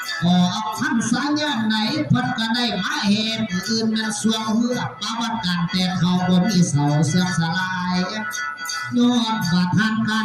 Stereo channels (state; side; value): identical; both; correlation 1.00